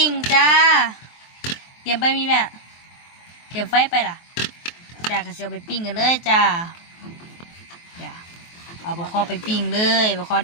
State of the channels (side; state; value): right; late; 23 ms